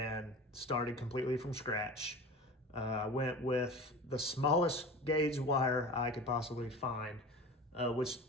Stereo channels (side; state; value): both; normal; correlation 0.34